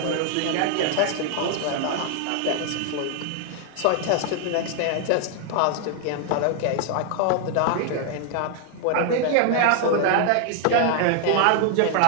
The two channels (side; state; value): both; different; correlation 0.00